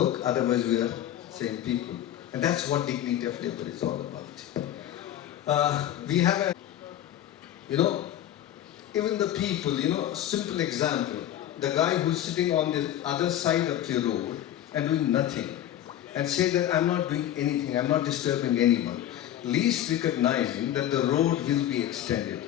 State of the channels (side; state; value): right; quieter; 11.8 dB